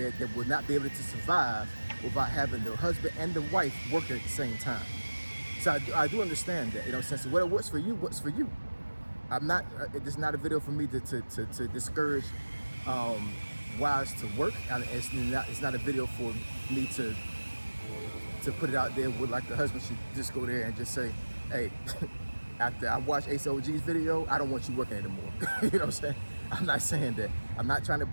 that will not be able to survive without having the husband and the wife working at the same time. So I do understand that, you know, since what works for you works for you. I'm not. It's not a video for me to discourage wives to work. It's not a video for me to put it out there with like the husband should just go there and just say, hey, after I watch Ace OG's video, I don't want you working anymore. You know what I'm saying? I'm not saying that. I'm not trying to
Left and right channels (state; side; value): inverted; both; correlation -1.00